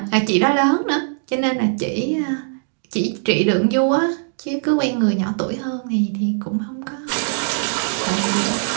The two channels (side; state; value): left; silent; digital silence